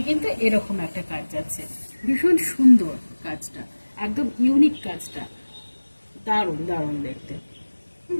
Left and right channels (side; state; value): both; inverted; correlation -1.00